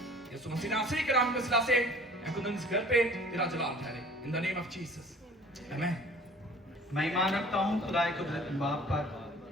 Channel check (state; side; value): normal; both; correlation 0.49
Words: यीशु मसीह नासरी के नाम के वसीला से खुदावंद इस घर पे तेरा जलाल ठहरे, in the name of Jesus आमीन। मैं ईमान रखता हूँ खुदाए कुदरती बाप पर